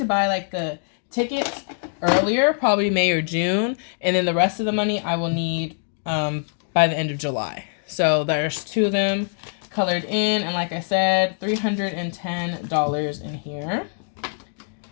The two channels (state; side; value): silent; right; 63 dB below the other